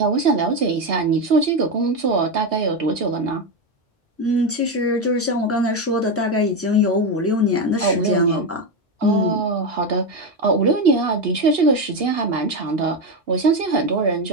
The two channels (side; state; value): both; normal; correlation 0.12